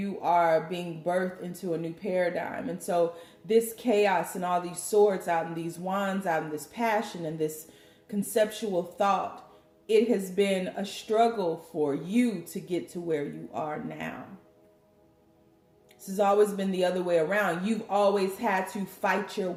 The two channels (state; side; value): identical; both; correlation 1.00